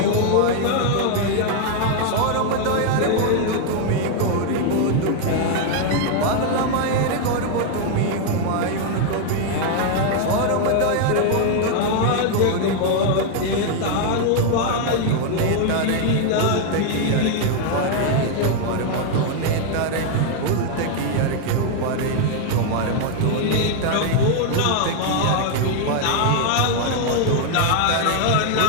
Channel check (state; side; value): different; both; correlation 0.00